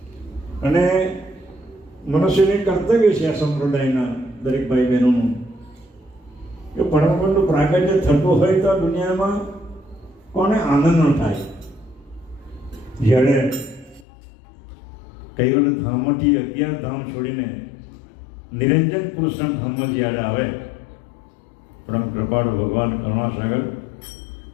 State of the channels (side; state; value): right; drops out; at 14.1 s